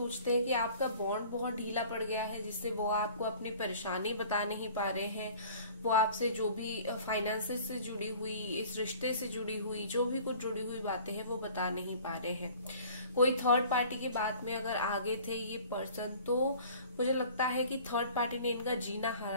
हैं कि आपका बॉन्ड बहुत ढीला पड़ गया है, जिससे वो आपको अपनी परेशानी बता नहीं पा रहे हैं। वो आपसे जो भी फाइनेंसेस से जुड़ी हुई, इस रिश्ते से जुड़ी हुई, जो भी कुछ जुड़ी हुई बातें हैं वो बता नहीं पा रहे हैं। कोई थर्ड पार्टी की बात में अगर आगे थे ये पर्सन, तो मुझे लगता है कि थर्ड पार्टी ने इनका जीना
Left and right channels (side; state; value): both; inverted; correlation -0.48